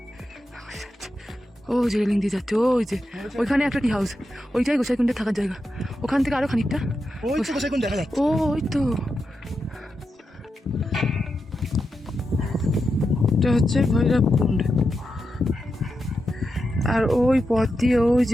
ও যে রেলিং দিয়ে যাচ্ছে, ওই যে ওইখানে একটা টি হাউস, ওইটাই গোসাইকুণ্ডে থাকার জায়গা। ওখান থেকে আরো খানিকটা। ওই তো গোসাইকুণ্ড দেখা যাচ্ছে। ও ওই তো, এটা হচ্ছে ভৈরবকুণ্ড। আর ওই পথ দিয়ে, ওই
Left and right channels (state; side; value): normal; both; correlation 0.87